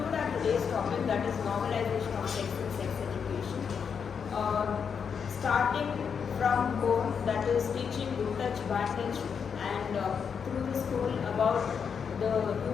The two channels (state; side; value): quieter; right; 6.7 dB